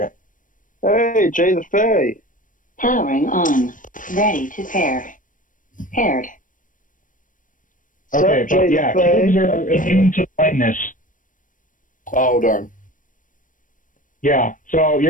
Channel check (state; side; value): late; right; 0.38 ms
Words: Hey, Jay the Fae. Powering on. Ready to pair. Paired. Okay, but yeah, cubes are immune to blindness. Oh, darn. Yeah, so